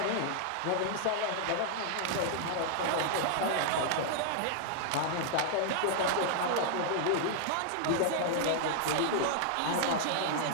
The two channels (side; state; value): both; different; correlation -0.01